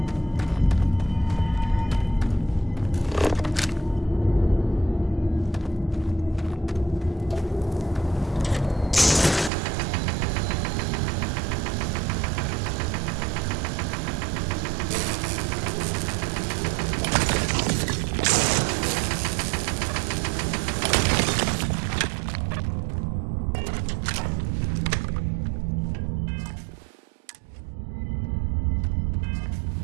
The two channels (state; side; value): drops out; left; at 9.5 s